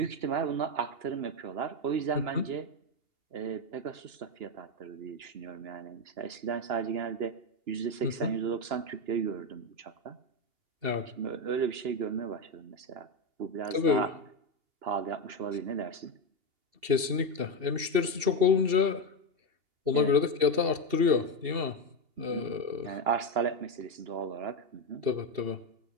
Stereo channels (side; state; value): left; late; 2.7 ms